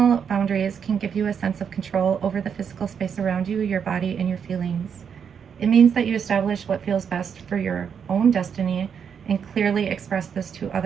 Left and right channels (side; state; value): left; quieter; 7.2 dB